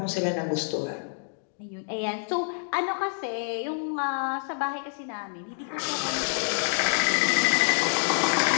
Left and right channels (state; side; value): silent; right; digital silence